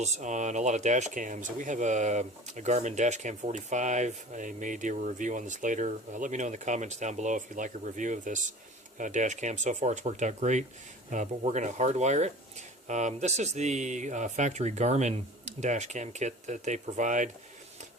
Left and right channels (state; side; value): normal; both; correlation 0.40